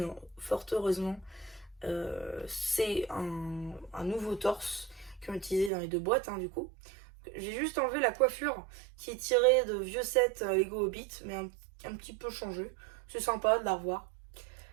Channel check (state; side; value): drops out; left; at 5.7 s